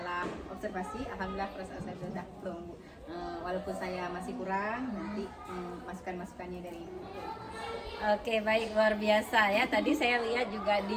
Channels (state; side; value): identical; both; correlation 1.00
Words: observasi, alhamdulillah perasaan saya sudah plong Bu. Walaupun saya masih kurang, nanti masukan-masukannya dari Ibu. Oke, baik, luar biasa ya. Tadi saya lihat juga